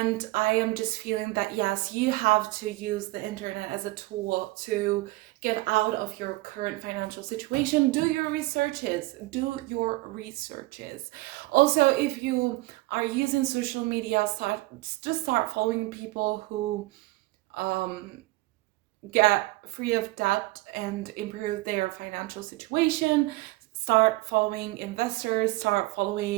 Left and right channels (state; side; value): quieter; left; 20.5 dB